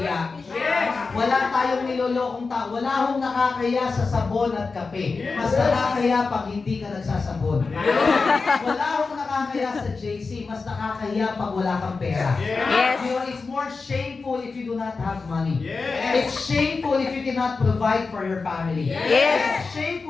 Wala tayong nilolokong tao. Wala hong nakakahiya sa sabon at kape. Mas nakakahiya pag hindi ka nagsasabon. Wala hong nakakahiya sa JC. Mas nakakahiya pag wala kang pera. Yes. You know, it's more shameful shameful if you do not have money. It's shameful if you cannot provide for your family. Yes. It's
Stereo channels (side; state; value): right; quieter; 4.3 dB